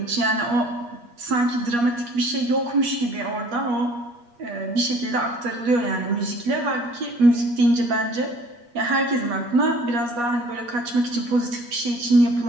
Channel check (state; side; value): late; left; 8.4 ms